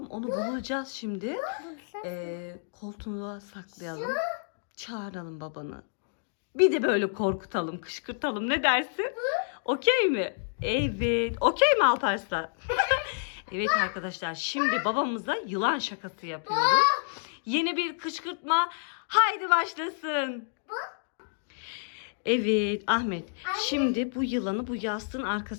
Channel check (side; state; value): right; silent; digital silence